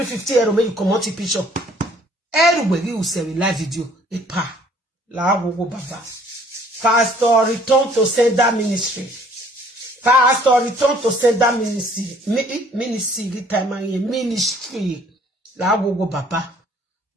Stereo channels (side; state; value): both; normal; correlation 0.59